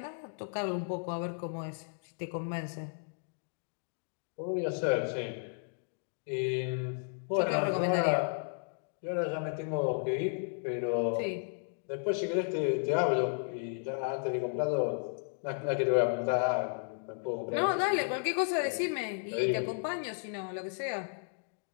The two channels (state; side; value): silent; right; digital silence